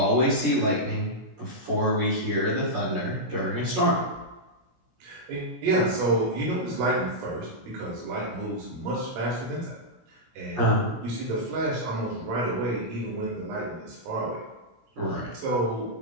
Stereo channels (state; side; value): late; left; 16 ms